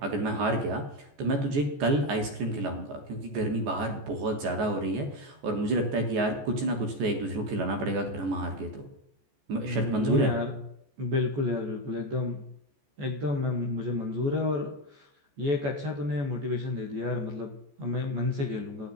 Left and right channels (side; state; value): left; late; 14 ms